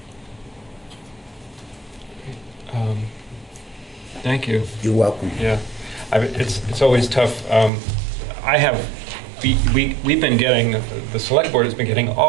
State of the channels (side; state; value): left; drops out; at 7.7 s